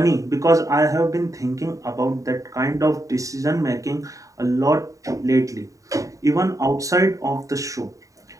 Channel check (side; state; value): left; late; 0.16 ms